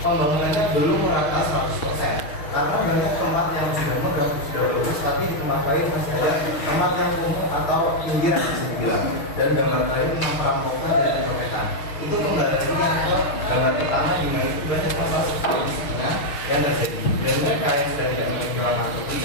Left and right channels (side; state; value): right; late; 6.4 ms